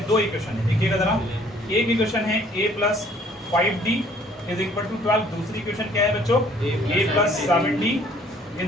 2 इक्वेशन है। देखिएगा जरा, एक इक्वेशन है A plus 5D is equal to 12। दूसरी इक्वेशन क्या है बच्चों? A plus 7D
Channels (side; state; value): both; normal; correlation 0.58